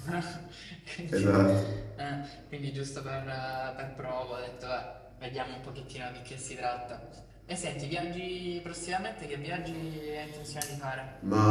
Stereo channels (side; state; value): both; identical; correlation 1.00